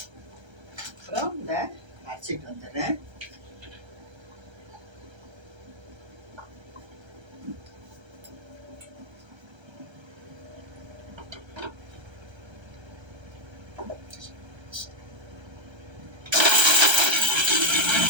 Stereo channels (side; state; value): left; late; 1.3 ms